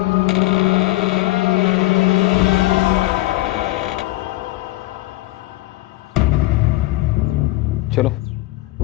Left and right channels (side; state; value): right; quieter; 18.6 dB